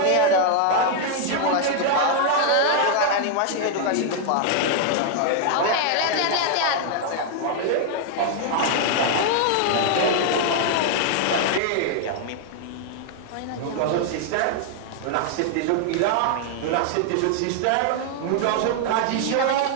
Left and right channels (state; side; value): different; both; correlation 0.00